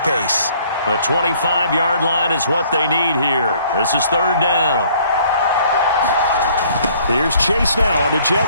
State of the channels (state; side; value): inverted; both; correlation -0.59